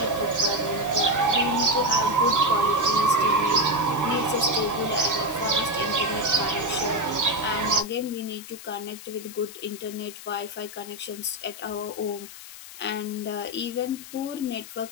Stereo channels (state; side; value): noise; left; hiss, 15 dB below the sound